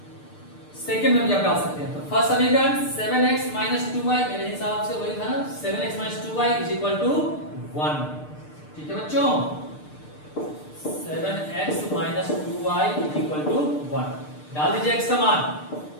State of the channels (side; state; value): right; late; 6.7 ms